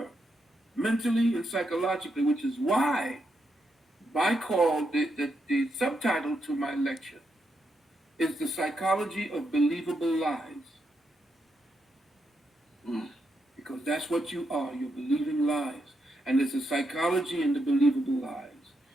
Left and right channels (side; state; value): both; normal; correlation 0.82